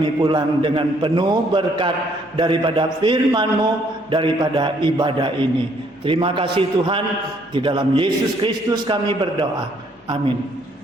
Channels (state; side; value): normal; both; correlation 0.66